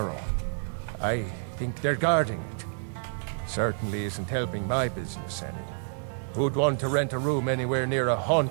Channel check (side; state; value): left; silent; digital silence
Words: I think they're guarding it. Certainly isn't helping my business any. Who'd want to rent a room anywhere near a